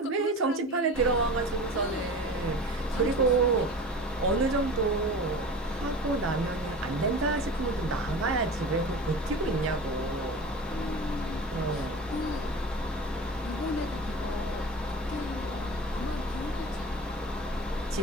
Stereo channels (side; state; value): both; normal; correlation 0.35